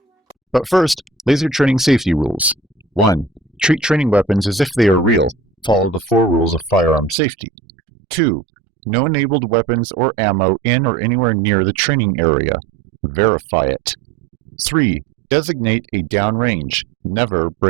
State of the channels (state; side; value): drops out; left; at 7.2 s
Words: But first, laser training safety rules. 1. Treat training weapons as if they are real. Follow the 4 rules of firearm safety. 2. No enabled weapons or ammo in or anywhere near the training area. Verify it. 3. Designate a downrange. Never